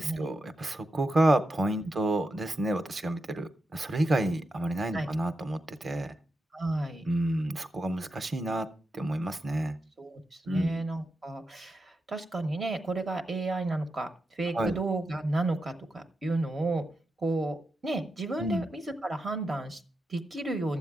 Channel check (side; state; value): both; normal; correlation 0.87